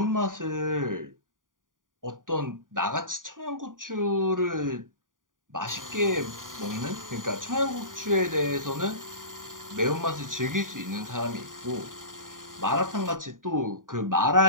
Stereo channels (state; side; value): late; left; 0.89 ms